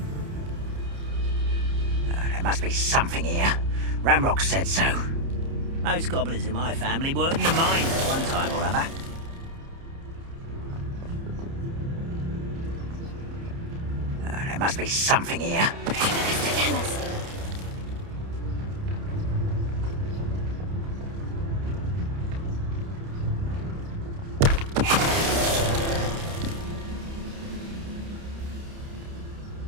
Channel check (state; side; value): late; left; 30 ms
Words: There must be something here. Ramrock said so. Most goblins in my family worked in the mines at one time or other. There must be something here. Tell us.